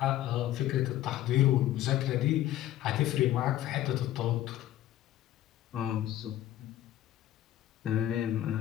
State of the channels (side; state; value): right; quieter; 13.2 dB